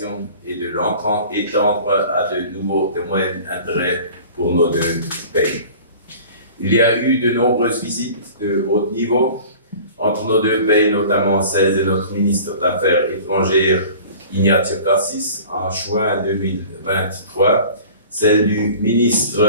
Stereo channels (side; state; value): both; inverted; correlation -0.43